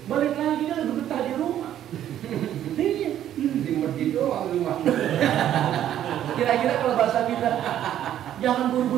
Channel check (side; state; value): left; quieter; 11.2 dB